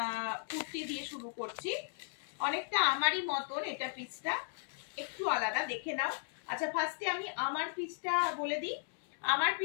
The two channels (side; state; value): right; silent; 54 dB below the other